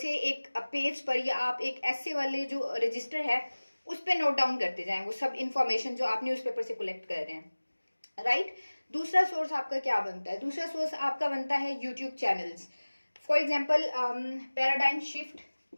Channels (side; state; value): both; inverted; correlation -1.00